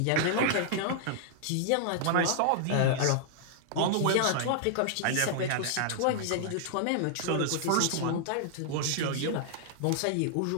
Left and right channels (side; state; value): both; different; correlation -0.01